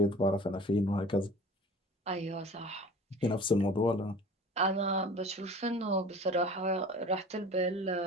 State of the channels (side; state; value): both; normal; correlation 0.42